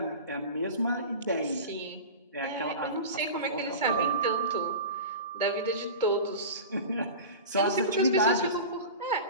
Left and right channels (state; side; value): inverted; both; correlation -0.31